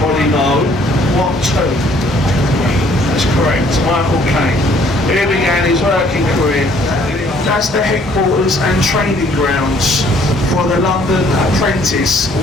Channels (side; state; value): both; normal; correlation 0.61